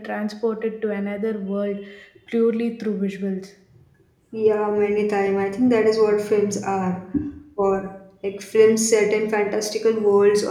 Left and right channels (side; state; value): both; identical; correlation 1.00